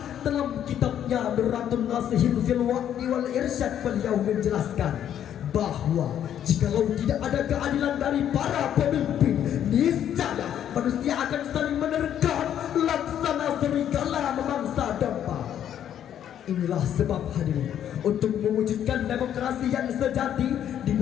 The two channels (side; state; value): right; quieter; 10.1 dB